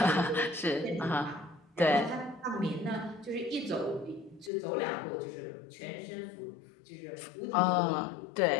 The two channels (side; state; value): right; drops out; at 4.5 s